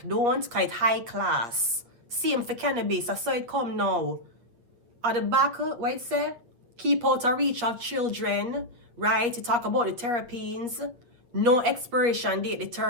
Don't, cause it high class. Same for cannabis, I saw it come now. At the back, what it say? Keep out of reach of children, right? You talk about the terpenes. No expiration date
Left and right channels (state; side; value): late; left; 8.4 ms